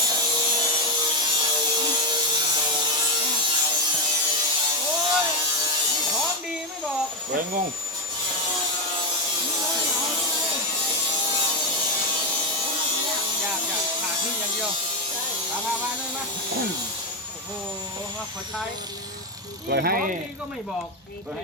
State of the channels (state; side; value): normal; both; correlation 0.09